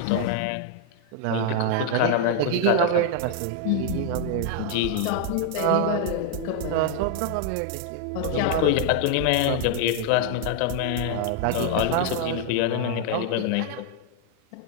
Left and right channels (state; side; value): different; both; correlation 0.00